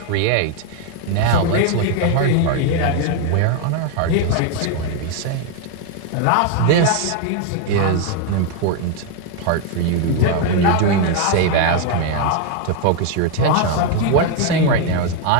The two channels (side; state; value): both; different; correlation 0.00